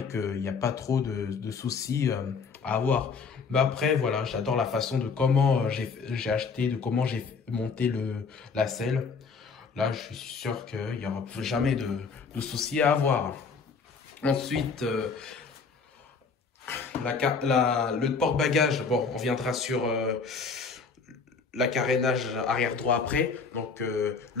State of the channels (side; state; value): right; quieter; 5.1 dB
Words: qu'il n'y a pas trop de soucis à avoir. Mais après, voilà, j'adore la façon de comment j'ai acheté, de comment j'ai monté la selle. Là, je suis sûr qu'il n'y aura jamais de soucis à avoir. Ensuite, le porte-bagages, bon, on viendra sur la carénage arrière droit après. Donc,